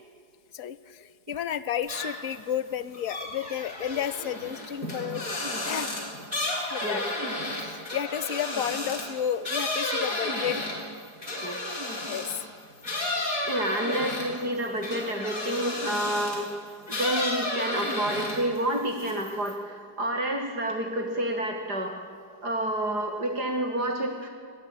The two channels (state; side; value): late; left; 4.8 ms